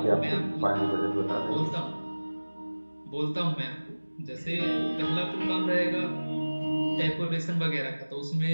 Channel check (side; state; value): both; inverted; correlation -1.00